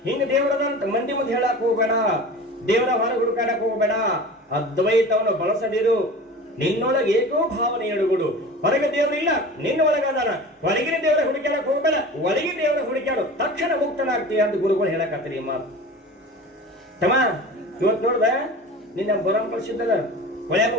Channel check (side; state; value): both; normal; correlation 0.36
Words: ಹಿಂಗ ದೇವರದಂತ ಮಂದಿ ಮುಂದೆ ಹೇಳಕ್ ಹೋಗ್ಬೇಡ, ದೇವರ ಹೊರಗೆ ಹುಡುಕಾಡಕ್ ಹೋಗ್ಬೇಡ. ಅದ್ವೈತವನ್ನು ಬಳಸದಿರು. ನಿನ್ನೊಳಗೆ ಏಕೋ ಭಾವನೆ ಎಡುಗುಡು. ಹೊರಗೆ ದೇವರಿಲ್ಲ, ನಿನ್ನೊಳಗದಾನ. ಹೊರಗಿನ ದೇವರ ಹುಡುಕಾಡಕ್ ಹೋಗ್ಬೇಡ, ಒಳಗಿನ ದೇವರ ಹುಡುಕಾಡು, ತಕ್ಷಣ ಮುಕ್ತನಾಗ್ತೀಯ ಅಂತ ಗುರುಗಳು ಹೇಳಕತ್ತೀರಿ ಈ ಮಾತು. ತಮ್ಮ ಇವತ್ತು ನೋಡ್ದ, ನಿನ್ನ ಬರಂ ಕಳಿಸಿದ್ದಲ್ಲ, ಹೊಳ್ಯಾಗ